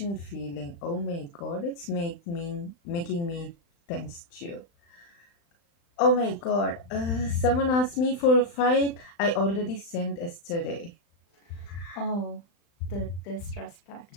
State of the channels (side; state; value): right; late; 35 ms